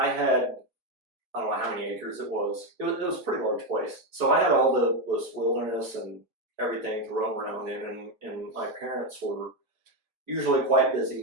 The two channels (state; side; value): late; left; 4.3 ms